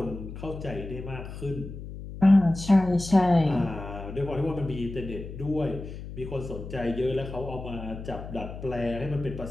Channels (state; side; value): noise; left; hum, 10 dB below the sound